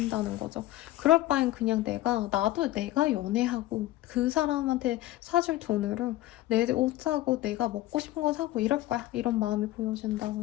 거죠. 그럴 바엔 그냥 나도 내가 연애하고 그 사람한테 사줄 돈으로 내 옷 사고 내가 먹고 싶은 거 사고 이럴 거야. 이런 마음이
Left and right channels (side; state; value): right; quieter; 15.9 dB